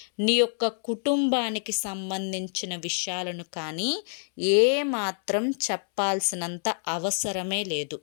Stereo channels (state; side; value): silent; right; 60 dB below the other